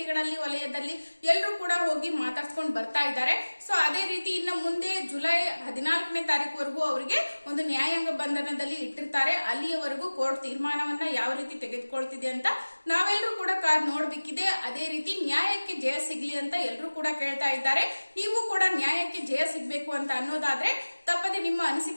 ವಲಯದಲ್ಲಿ ಎಲ್ಲರೂ ಕೂಡ ಹೋಗಿ ಮಾತಾಡ್ಸ್ಕೊಂಡು ಬರ್ತಾ ಇದ್ದಾರೆ. ಸೊ ಅದೇ ರೀತಿ ಇನ್ನು ಮುಂದೆ ಜುಲೈ 14ನೇ ತಾರೀಕುವರೆಗೂ ಅವರಿಗೆ ಒಂದು ನ್ಯಾಯಾಂಗ ಬಂಧನದಲ್ಲಿ ಇಟ್ಟಿರ್ತಾರೆ. ಅಲ್ಲಿಯವರೆಗೂ ಕೋರ್ಟ್ ತೀರ್ಮಾನವನ್ನ ಯಾವ ರೀತಿ ತೆಗೆದುಕೊಳ್ತಿದೆ ಅಂತ ನಾವೆಲ್ಲರೂ ಕೂಡ ಕಾದ್ ನೋಡ್ಬೇಕಿದೆ. ಅದೇ ರೀತಿ ನ್ಯಾಯಕ್ಕೆ ಜಯ ಸಿಗ್ಲಿ ಅಂತ ಎಲ್ಲರೂ ಕೂಡ ಕೇಳ್ತಾ ಇದ್ದಾರೆ. ನೀವು ಕೂಡ ನ್ಯಾಯಕ್ಕೆ ಜಯ ಸಿಗ್ಬೇಕು ಅಂತ ಅನ್ನೋದಾದ್ರೆ ತಪ್ಪದೆ ನಿಮ್ಮ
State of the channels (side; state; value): both; inverted; correlation -1.00